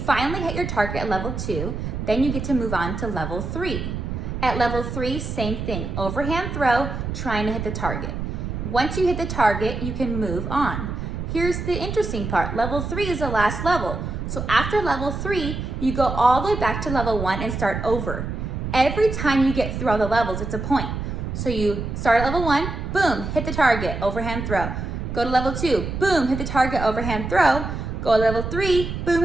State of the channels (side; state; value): right; noise; rumble, 5 dB below the sound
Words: hit your target at level 2, then you get to move on to level 3. At level 3, same thing, overhand throw, trying to hit the target. Once you hit the target, you can move on. Here's the interesting part, level 3 is the last level. So after level 3, you go all the way back to level 1 and start over. Every time you get through all the levels, it's a point. So you start at level 1, boom, hit the target, overhand throw. Go to level 2, boom, hit the target, overhand throw. Go to level 3, boom,